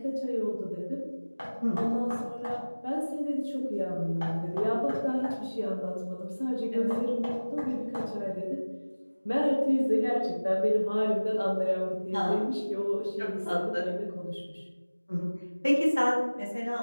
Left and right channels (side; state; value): both; inverted; correlation -1.00